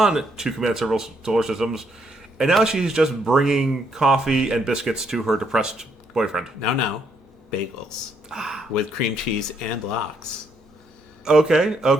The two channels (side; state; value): both; normal; correlation 0.73